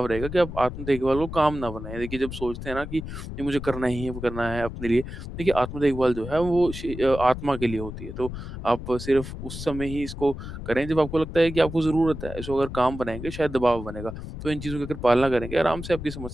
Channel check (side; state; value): left; noise; rumble, 9 dB below the sound